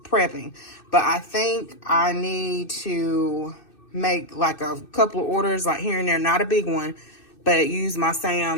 But I think I need to make like a couple of orders, like here and there, not a big one, but use my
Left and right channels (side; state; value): right; late; 2.6 ms